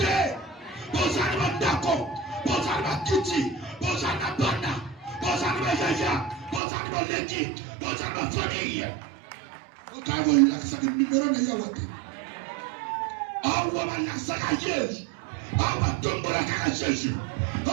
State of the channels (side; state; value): left; drops out; at 6.6 s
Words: Bozani bandako. Bozani bakiti. Bozani banda. Bozani bayaya. Bozani baleki. Bozani bafamille. Okavo yulakisa ke numéro na yawate. Awa balakisa ka Yesu. Awa tombola ka Jésus.